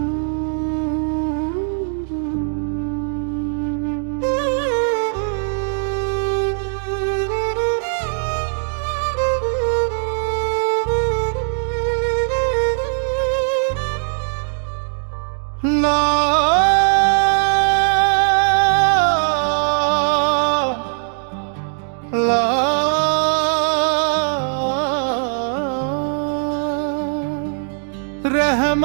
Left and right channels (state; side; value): silent; left; digital silence